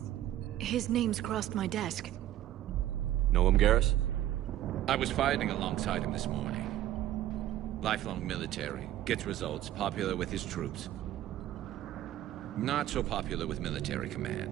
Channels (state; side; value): quieter; left; 13.0 dB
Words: His name's crossed my desk. Know him, Garrus? I was fighting alongside him this morning. Lifelong military, gets results, popular with his troops. Not so popular with military